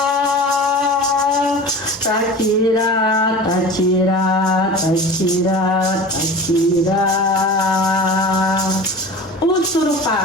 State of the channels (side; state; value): both; normal; correlation 0.35